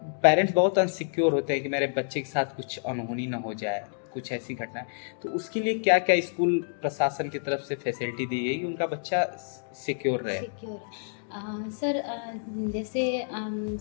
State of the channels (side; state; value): right; silent; digital silence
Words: पेरेंट्स बहुत अनसिक्योर होते हैं कि मेरे बच्चे के साथ कुछ अनहोनी ना हो जाए, कुछ ऐसी घटना है, तो उसके लिए क्या क्या स्कूल प्रशासन की तरफ से फैसिलिटी दी गई कि उनका बच्चा सिक्योर रहे? सर, जैसे